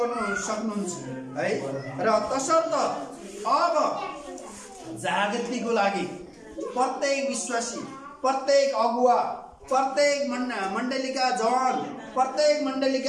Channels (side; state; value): both; identical; correlation 1.00